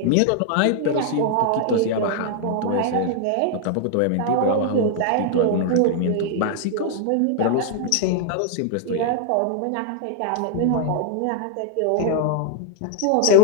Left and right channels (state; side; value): different; both; correlation 0.00